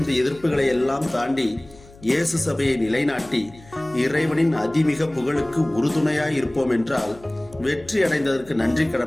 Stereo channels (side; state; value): left; noise; hum, 23 dB below the sound